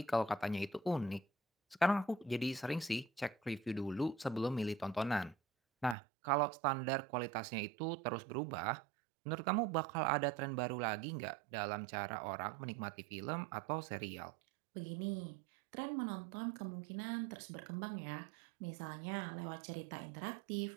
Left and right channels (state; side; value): drops out; left; at 6.0 s